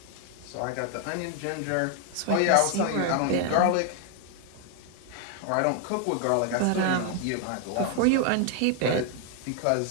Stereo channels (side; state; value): both; different; correlation 0.00